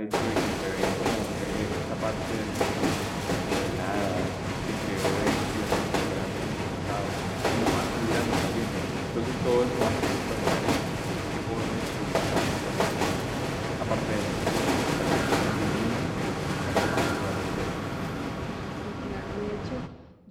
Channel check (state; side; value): identical; both; correlation 1.00